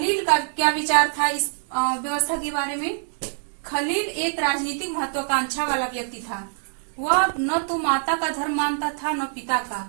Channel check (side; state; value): left; silent; 62 dB below the other